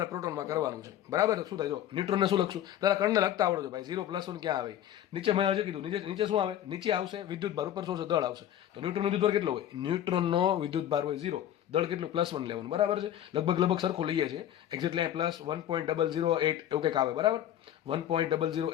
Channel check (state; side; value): quieter; right; 11.3 dB